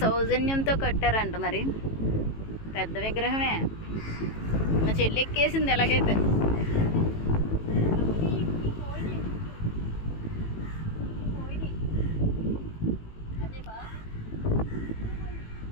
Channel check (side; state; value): right; late; 18 ms